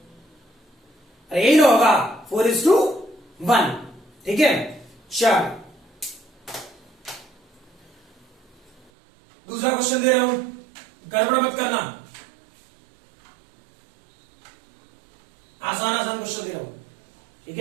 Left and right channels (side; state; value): left; drops out; at 8.8 s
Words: अरे यही ना होगा, 4:1। ठीक है, चल दूसरा क्वेश्चन दे रहा हूं, गड़बड़ मत करना, आसान क्वेश्चन दे रहा हूं। ठीक